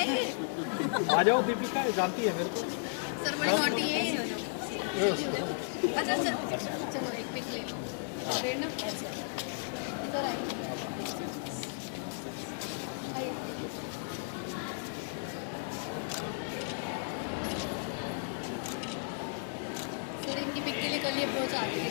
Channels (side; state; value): right; silent; 55 dB below the other